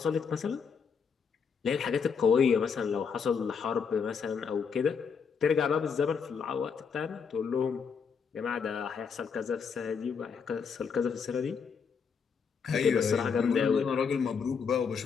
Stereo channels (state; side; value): quieter; right; 6.1 dB